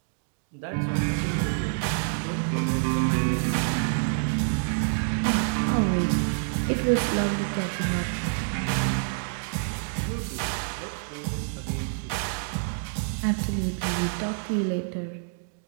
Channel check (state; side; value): silent; left; digital silence